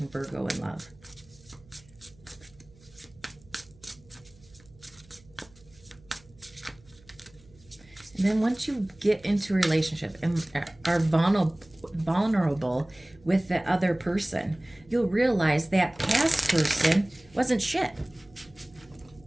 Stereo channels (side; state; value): right; noise; hum, 27 dB below the sound